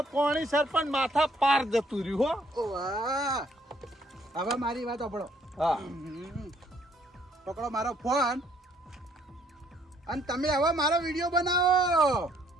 કોણી સરપંચ માથા પાર જતું રહ્યું હો ઓ વાહ હવે મારી વાત સાંભળો હા પકડો મારો ફોન અને તમે હવે મારો વિડીયો બનાવો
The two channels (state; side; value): normal; both; correlation 0.66